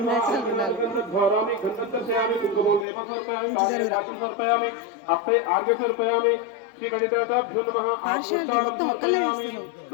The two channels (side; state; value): right; drops out; at 2.9 s